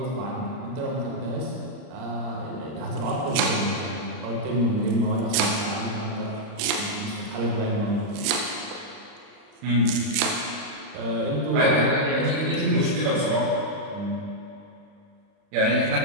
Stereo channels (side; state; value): left; late; 39 ms